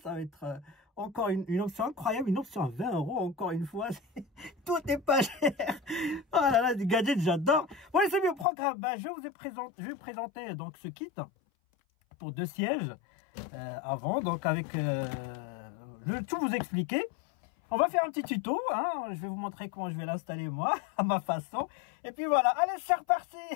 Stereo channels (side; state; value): right; drops out; at 8.5 s